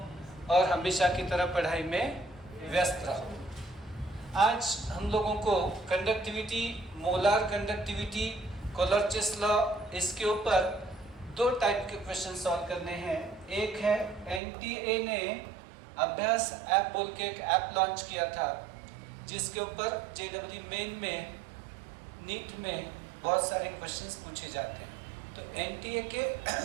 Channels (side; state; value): left; drops out; at 14.4 s